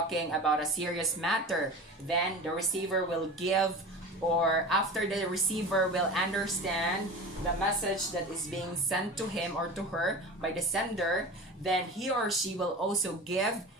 about a serious matter, then the receiver will give, or after the receiver will understand the message that is being sent to him or to her by the sender, then he or she will also give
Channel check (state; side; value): normal; both; correlation 0.33